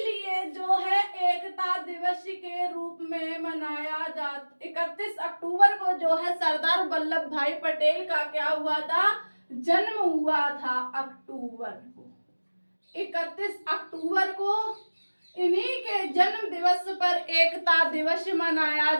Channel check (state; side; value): inverted; both; correlation -1.00